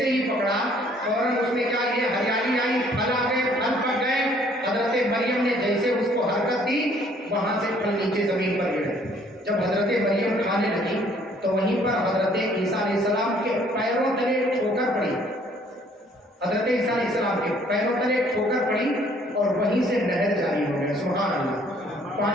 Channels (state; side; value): normal; both; correlation 0.61